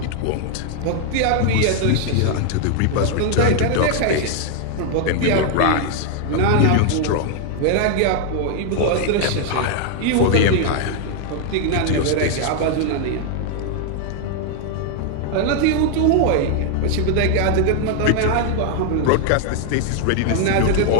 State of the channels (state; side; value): different; both; correlation 0.00